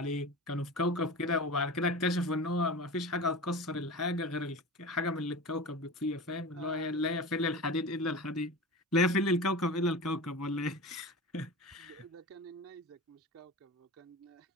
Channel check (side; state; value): both; normal; correlation 0.31